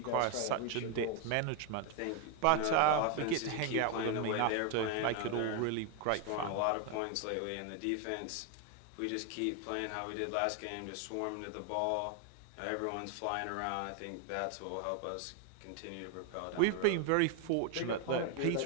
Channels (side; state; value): both; different; correlation 0.01